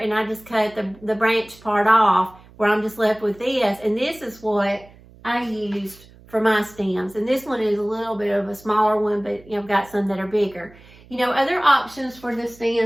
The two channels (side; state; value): right; noise; hum, 24 dB below the sound